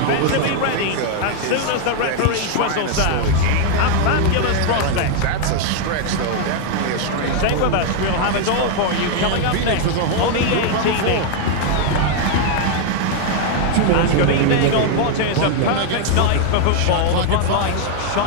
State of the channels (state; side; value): different; both; correlation 0.00